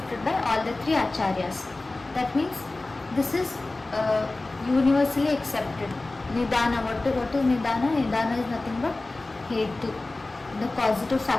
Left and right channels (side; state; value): right; quieter; 3.1 dB